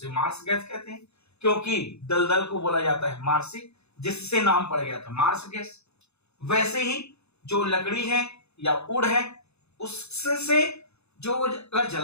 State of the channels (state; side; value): late; right; 0.80 ms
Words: मार्स गैस कहते हैं, क्योंकि दलदल को बोला जाता है मार्सी, जिससे नाम पड़ गया था मार्स गैस। वैसे ही जो लकड़ी है या वुड है, उससे जो अगर